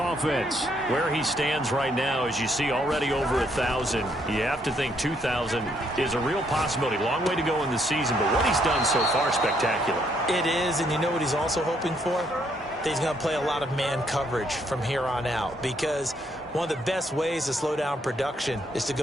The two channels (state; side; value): normal; both; correlation 0.71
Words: Where he stands right now, as you see, already over 1,000. You have to think 2,000 is a real possibility. Long way to go in the season, but what he's done so far, spectacular. It is, and you know what he's also hoping for? That he's going to play a lot of man coverage from here on out, because one of the best ways to slow down production is to